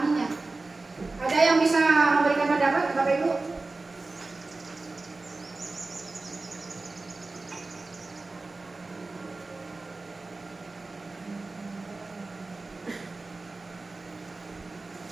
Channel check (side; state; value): left; quieter; 3.4 dB